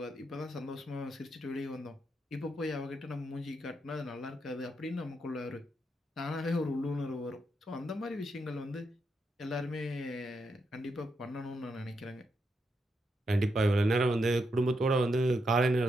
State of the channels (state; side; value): normal; both; correlation 0.82